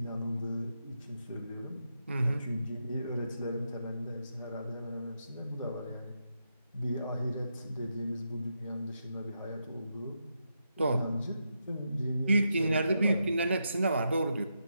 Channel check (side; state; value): both; inverted; correlation -0.84